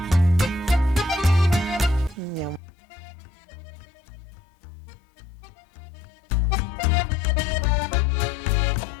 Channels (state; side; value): drops out; right; at 2.6 s